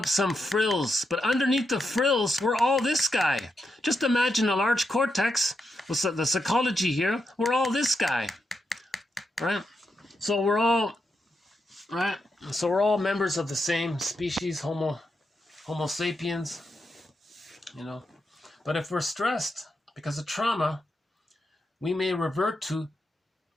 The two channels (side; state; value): both; normal; correlation 0.84